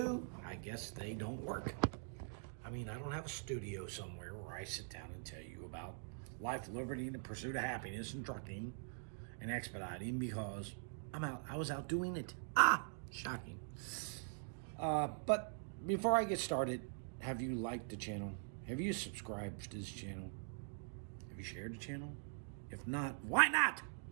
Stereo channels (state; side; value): silent; left; digital silence